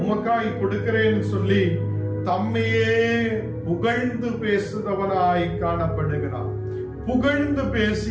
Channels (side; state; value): both; identical; correlation 1.00